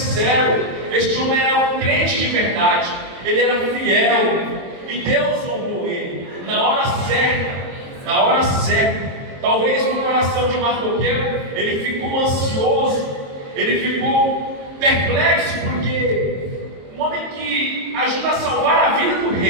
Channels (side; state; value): left; late; 22 ms